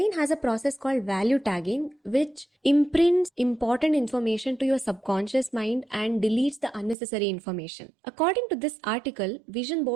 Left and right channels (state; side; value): drops out; left; at 7.0 s